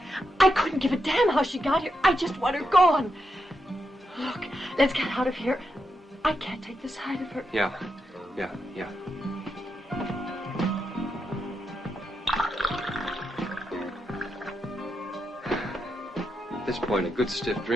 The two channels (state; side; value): normal; both; correlation 0.84